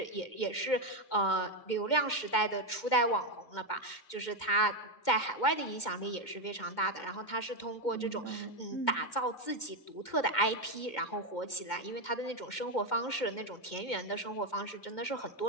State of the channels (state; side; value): late; right; 2.1 ms